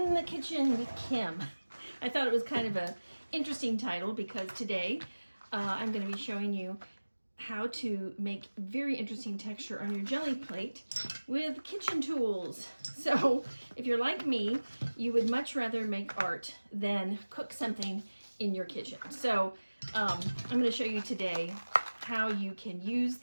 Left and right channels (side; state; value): both; inverted; correlation -1.00